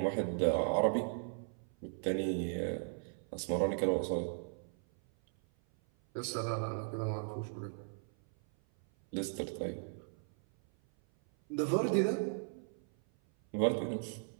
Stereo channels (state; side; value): silent; left; 53 dB below the other